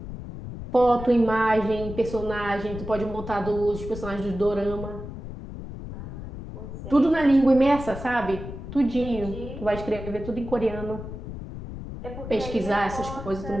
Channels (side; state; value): left; noise; rumble, 10 dB below the sound